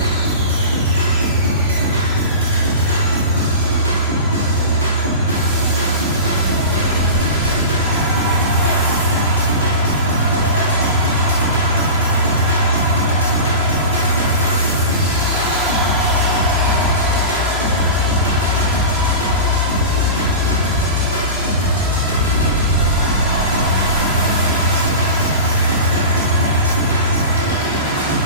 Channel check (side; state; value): both; inverted; correlation -0.30